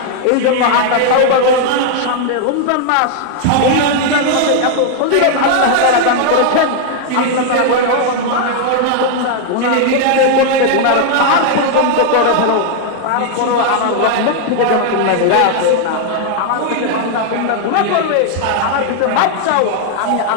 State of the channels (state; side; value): different; both; correlation 0.00